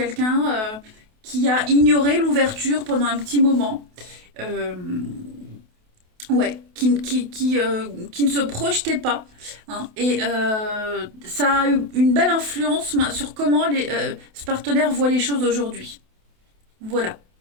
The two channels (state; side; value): late; left; 28 ms